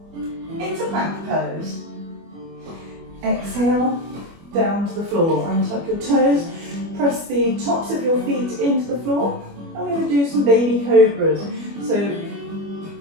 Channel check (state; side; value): late; left; 25 ms